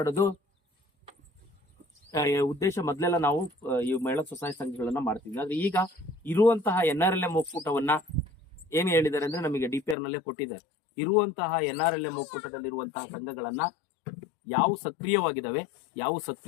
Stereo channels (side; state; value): right; drops out; at 10.0 s